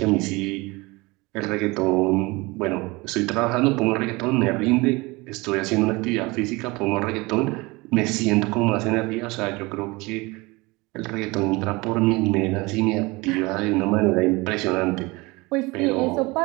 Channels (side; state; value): left; quieter; 23.9 dB